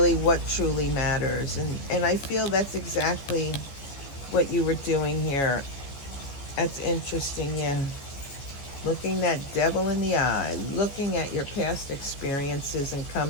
what truly matters. And I feel that's exactly what you were doing here. That's interesting, yeah. Looking that devil in the eye, looking at your past experiences and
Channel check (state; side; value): late; right; 15 ms